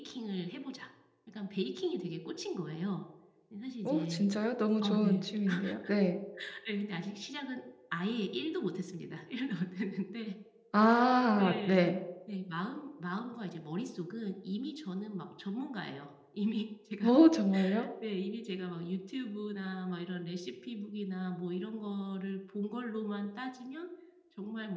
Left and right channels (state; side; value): identical; both; correlation 1.00